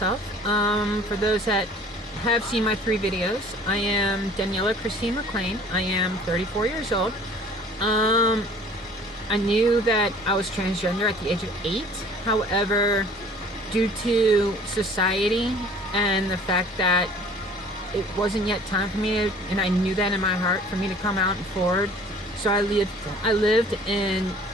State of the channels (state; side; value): normal; both; correlation 0.50